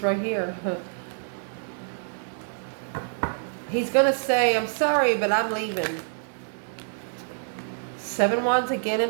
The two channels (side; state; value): left; silent; digital silence